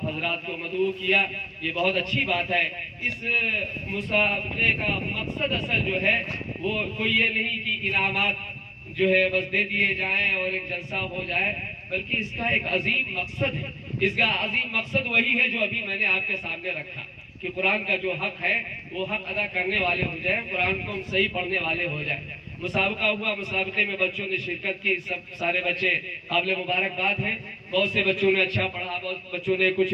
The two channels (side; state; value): both; identical; correlation 1.00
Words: حضرات کو مدعو کیا، یہ بہت اچھی بات ہے. اس مسابقے کا مقصد اصل جو ہے وہ کوئی یہ نہیں کہ انعامات جو ہے بس دے دیے جائیں اور ایک جلسہ ہو جائے، بلکہ اس کا ایک عظیم مقصد ہے. اس کا عظیم مقصد وہی ہے جو ابھی میں نے آپ کے سامنے رکھا کہ قرآن کا جو حق ہے وہ حق ادا کرنے والے ہو جائیں، قرآن کو ہم صحیح پڑھنے والے ہو جائیں. مسابقہ ہوا، مسابقے میں بچوں نے شرکت کی، سب سارے بچے قابل مبارکباد ہیں. بہت سے بچوں نے اچھا پڑھا، بہت بچوں نے کچھ